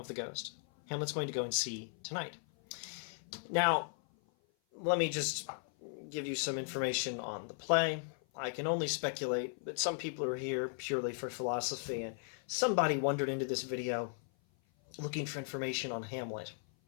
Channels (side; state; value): right; silent; 53 dB below the other